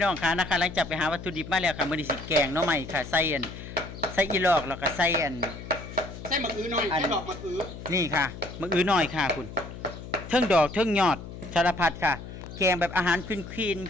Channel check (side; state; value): left; noise; hum, 12 dB below the sound